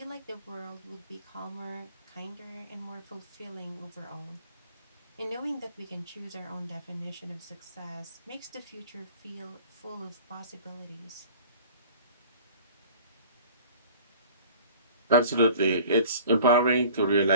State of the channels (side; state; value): both; inverted; correlation -0.47